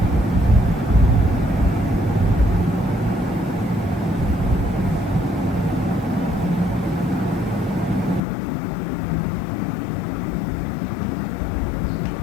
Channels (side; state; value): right; drops out; at 8.2 s